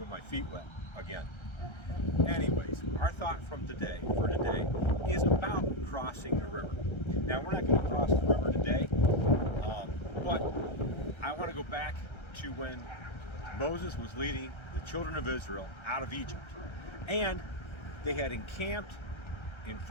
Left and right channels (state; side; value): late; right; 1.3 ms